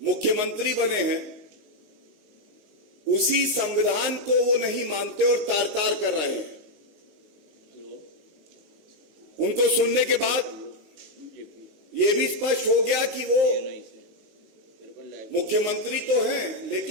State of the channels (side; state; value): left; late; 19 ms